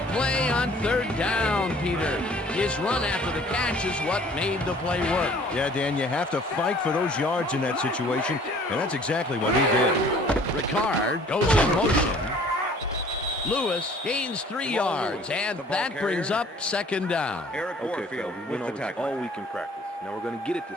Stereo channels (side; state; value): both; normal; correlation 0.53